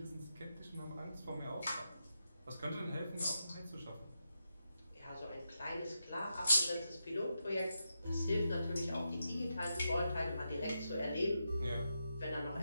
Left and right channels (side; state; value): both; inverted; correlation -0.86